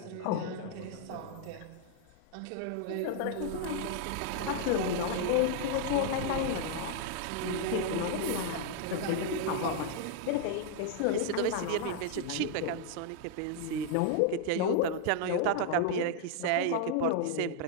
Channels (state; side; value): different; both; correlation -0.01